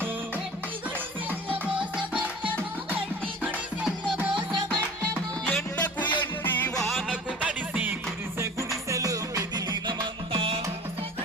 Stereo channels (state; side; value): normal; both; correlation 0.42